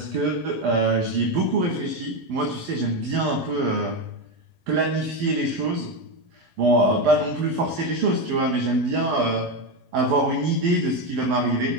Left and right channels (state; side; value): late; left; 12 ms